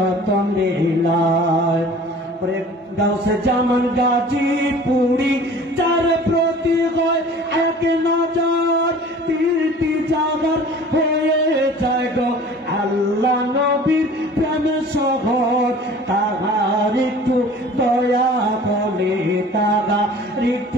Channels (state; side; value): normal; both; correlation 0.46